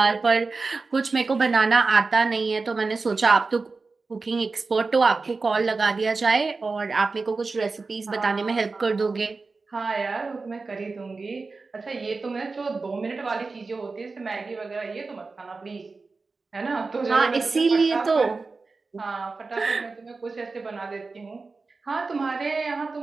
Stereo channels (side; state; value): left; quieter; 4.0 dB